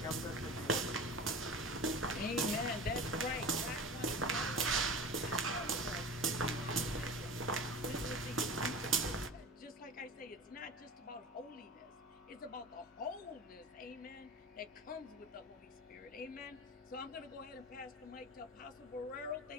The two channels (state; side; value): normal; both; correlation 0.34